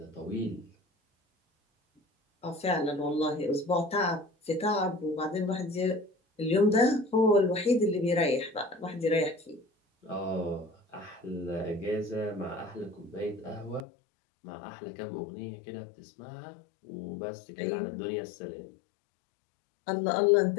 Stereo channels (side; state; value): right; drops out; at 13.9 s